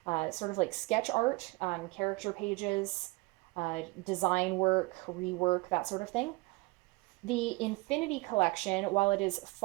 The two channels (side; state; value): left; quieter; 24.6 dB